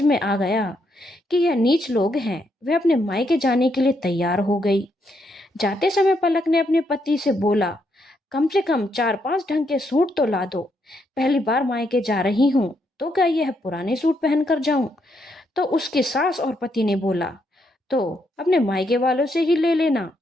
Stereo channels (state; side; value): normal; both; correlation 0.77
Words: में आ गया कि यह नीच लोग हैं। वह अपने मायके जाने के लिए तैयार हो गई। जाते समय पलक ने अपने पति से बोला, कम से कम 4-5 ढंग के सूट तो ला दो। पहली बार मायके जा रही हूँ तो क्या यह पुराने सूट पहन कर जाऊं? तो उसके सास और पति ने बोला, तो अपने मायके वालों से ही ले लेना।